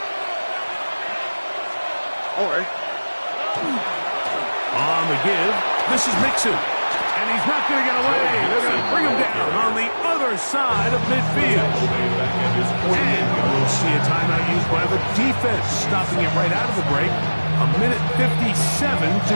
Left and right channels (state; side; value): inverted; both; correlation -1.00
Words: All right. On the give, this is Mixon. And he's not going to get away. They're going to bring him down on the other side of midfield. And we'll see a timeout used by the defense, stopping it right out of the break. A minute 57 to